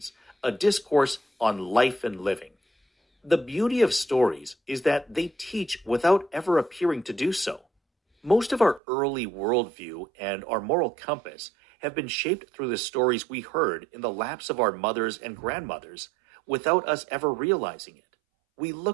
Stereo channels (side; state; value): left; drops out; at 8.8 s